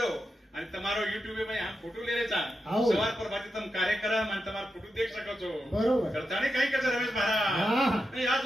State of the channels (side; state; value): both; normal; correlation 0.88